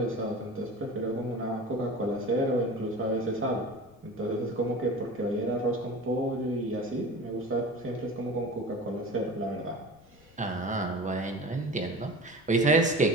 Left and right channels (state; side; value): noise; left; rumble, 28 dB below the sound